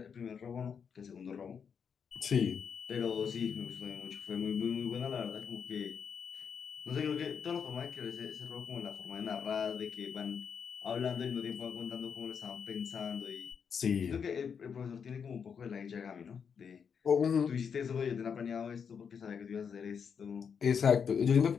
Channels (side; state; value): right; quieter; 6.8 dB